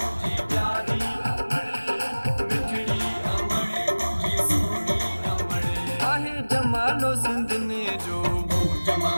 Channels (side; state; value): both; inverted; correlation -1.00